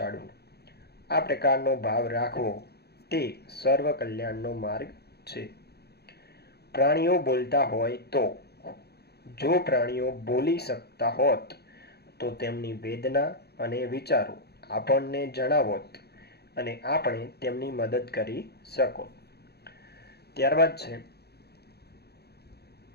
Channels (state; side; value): late; right; 0.47 ms